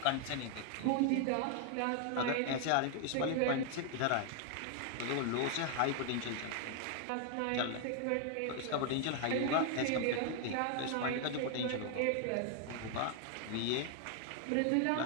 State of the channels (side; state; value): both; different; correlation 0.00